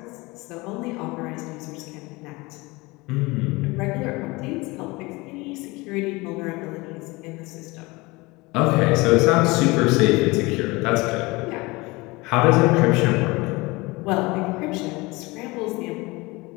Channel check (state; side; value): quieter; right; 23.4 dB